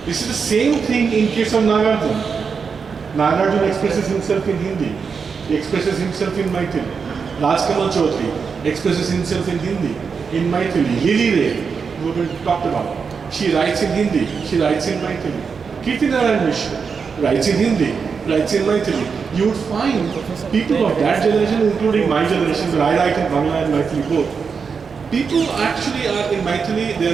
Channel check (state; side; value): quieter; left; 5.7 dB